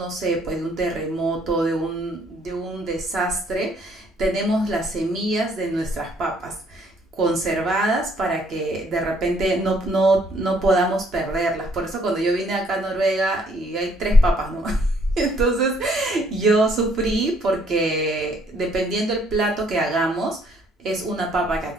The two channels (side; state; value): both; normal; correlation 0.65